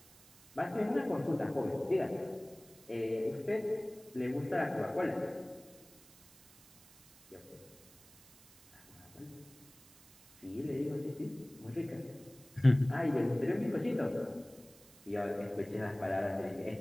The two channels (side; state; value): right; noise; hiss, 24 dB below the sound